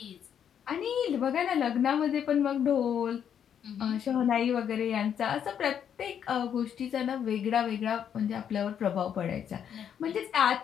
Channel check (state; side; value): quieter; right; 8.7 dB